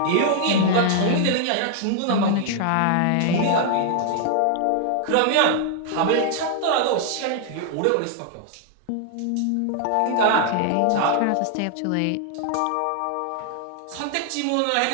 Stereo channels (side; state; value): both; different; correlation 0.00